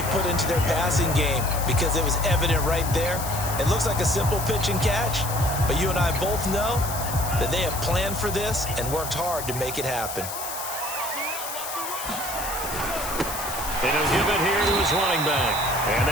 put into their passing game because it was evident right there. It looks like a simple pitch and catch, but you and I both know that they have planned for this and worked hard to make it happen. And he'll give it here to his running back. And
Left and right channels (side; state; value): left; noise; hiss, 7 dB below the sound